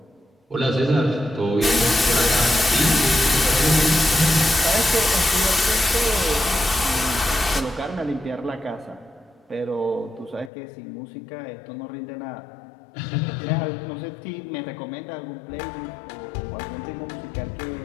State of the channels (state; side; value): drops out; right; at 10.5 s